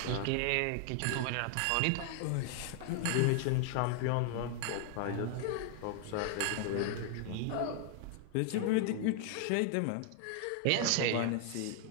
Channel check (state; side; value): different; both; correlation 0.00